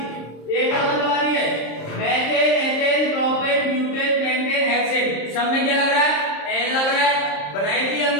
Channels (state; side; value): late; right; 26 ms